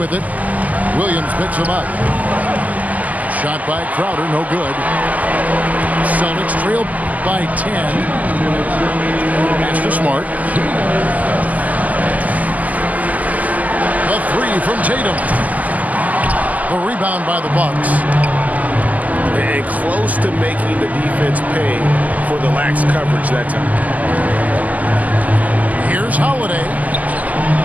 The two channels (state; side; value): late; left; 0.077 ms